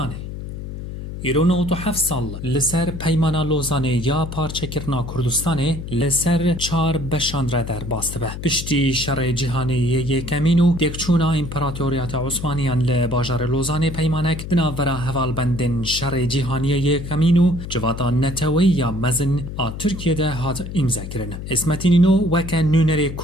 îro 97 sal li ser peymana Lozanê ya parçekirina Kurdistanê li ser çar beşan re derbas dibe. Piştî şerê cîhanê yê yêkemîn û têkçûna İmparatoriyeta Osmaniyan li bajarê Lozanê peymanek di navbera hevalbendên şerê cîhaniyê yêkemîn û civata netewî ya mezin a Tirkiyê de hat îmzekirin. İsmet İnönü weke nûnerê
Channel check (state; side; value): noise; left; hum, 8 dB below the sound